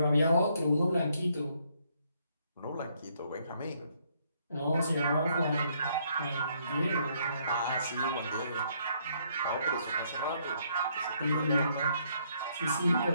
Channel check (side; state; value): both; inverted; correlation -0.70